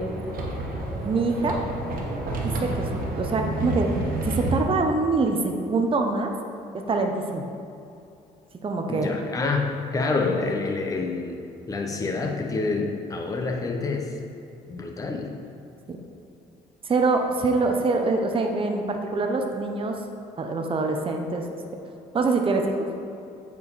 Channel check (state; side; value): normal; both; correlation 0.56